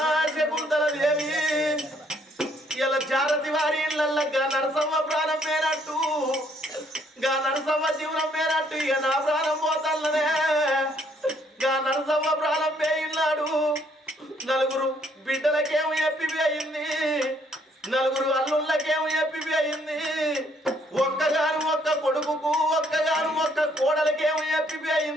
శకుంతల దేవి ఇలా జారతి వారి ఇళ్ళల్లో గా నరసమ్మ ప్రాణం పేరట్టు గా నరసమ్మ జీవనం పేరట్టు ఇక నా ప్రాణం పోతల్లనే గా నరసమ్మ ప్రాణం పేయిన్నాడు నలుగురు బిడ్డలకేమో ఎప్పివి అయింది నలుగురు అల్లుళ్ళకేమో ఎప్పివి అయింది ఒక్కగాను ఒక్క కొడుకుకు ఒక్కగాను ఒక్క కోడలకేమో ఎప్పివి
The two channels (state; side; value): normal; both; correlation 0.67